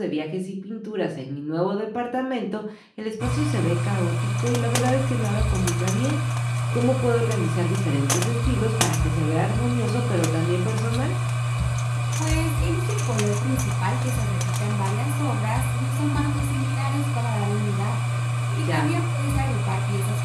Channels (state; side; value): identical; both; correlation 1.00